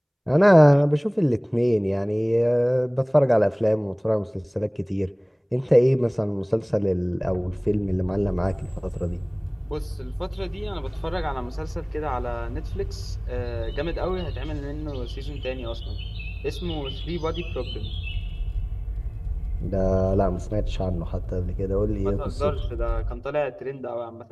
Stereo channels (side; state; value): both; identical; correlation 1.00